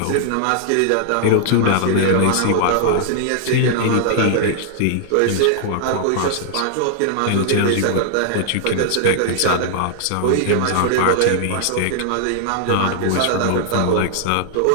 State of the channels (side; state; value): both; different; correlation 0.00